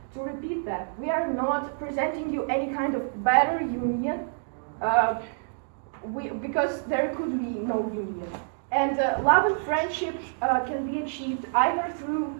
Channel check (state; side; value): silent; left; digital silence